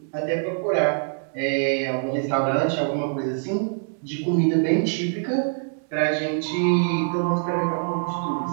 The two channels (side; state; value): left; silent; 62 dB below the other